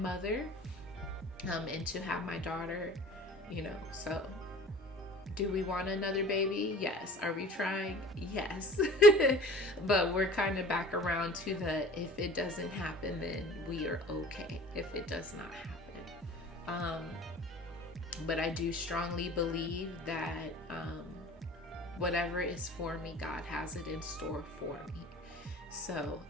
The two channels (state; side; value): normal; both; correlation 0.44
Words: and to have my daughter, you know. So do we want another baby? Yes. Are we trying? Yes. But we're kind of back around to the, if it doesn't happen, then we are okay if it does not happen. But I do strongly believe that whatever is for me, God has it in store for me. So